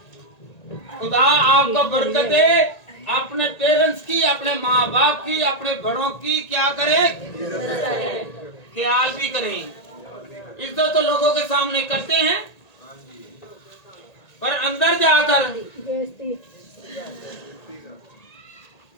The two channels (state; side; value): late; right; 1.8 ms